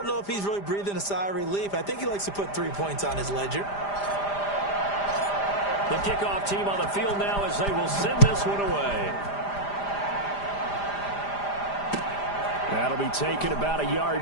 know if he's really breathing a sigh of relief. I think he likes to put 3 points on his ledger. The kickoff team on the field now as they will send this one away. That'll be taken about a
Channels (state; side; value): late; right; 5.0 ms